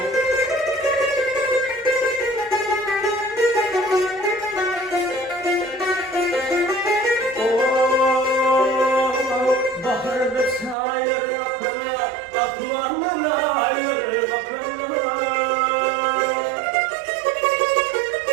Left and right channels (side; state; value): left; drops out; at 10.8 s